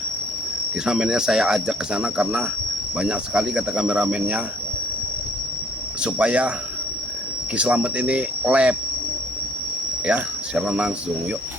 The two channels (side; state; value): both; normal; correlation 0.61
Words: Kameramennya saya ajak ke sana karena banyak sekali kata kameramennya supaya Ki Slamet ini lab ya secara langsung. Yuk